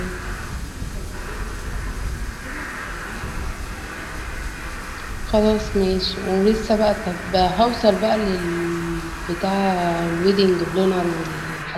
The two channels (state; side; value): identical; both; correlation 1.00